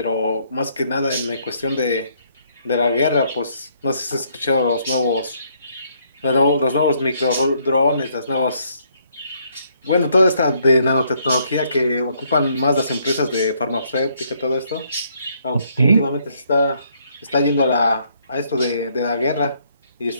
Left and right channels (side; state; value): both; inverted; correlation -0.70